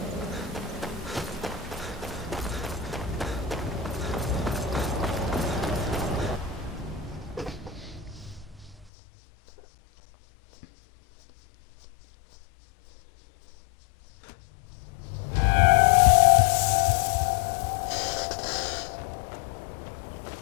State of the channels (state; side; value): drops out; right; at 8.9 s